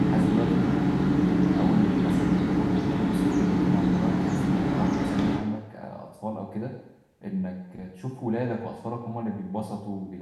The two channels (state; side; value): identical; both; correlation 1.00